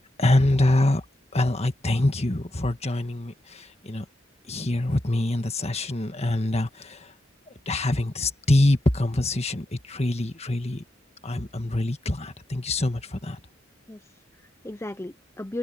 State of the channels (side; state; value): both; normal; correlation 0.86